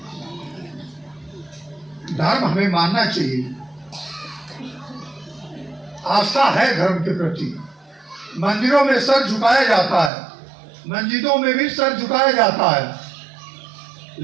धर्म हमें मानना चाहिए, आस्था है धर्म के प्रति। मंदिरों में सर झुकाया जाता है, मस्जिदों में भी सर झुकाया जाता है,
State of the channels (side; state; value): left; drops out; at 10.1 s